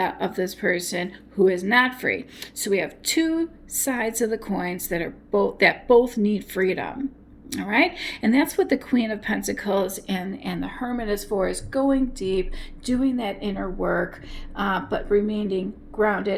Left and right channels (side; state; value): both; identical; correlation 1.00